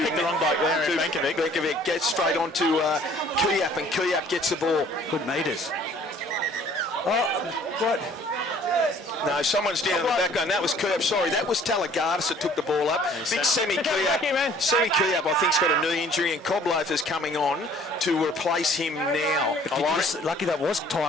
the wrong bloke there, and Benkovic. Benkovic gets straight onto Kiap, and Kiap gets the ball. Good metres. Oh, what? No, someone's down in the back line. That was Kiap. Sorry, that was Talagardis that took the ball up. Big Semi Kiap. Semi Kiap, I think, has got a knee injury, and Coblofer's coming on to replace him now. Lucky that was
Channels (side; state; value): both; normal; correlation 0.55